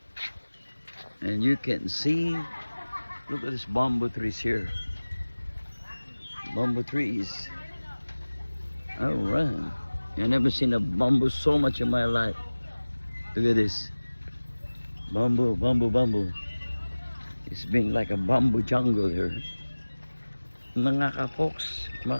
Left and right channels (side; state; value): both; inverted; correlation -1.00